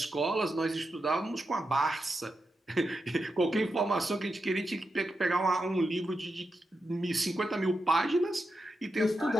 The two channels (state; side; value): normal; both; correlation 0.88